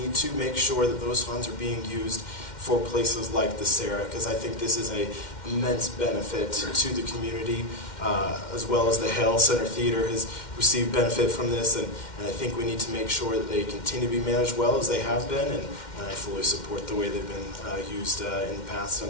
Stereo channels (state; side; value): late; right; 2.1 ms